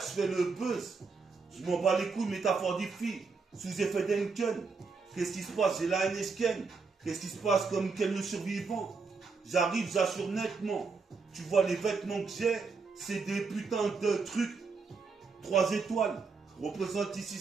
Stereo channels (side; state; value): left; quieter; 4.6 dB